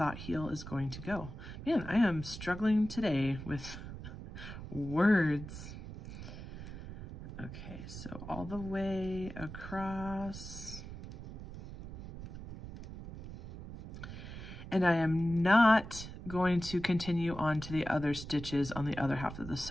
heel is going to go. Man, I am struggling today with words. Okay, so all the way across. And I am not going to continue on to the other stitches on the other half of the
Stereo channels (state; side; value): noise; right; rumble, 11 dB below the sound